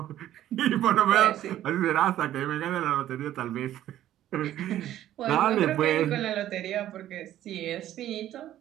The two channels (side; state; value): left; quieter; 12.6 dB